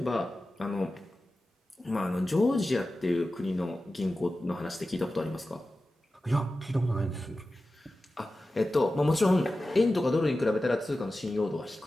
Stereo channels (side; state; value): both; normal; correlation 0.94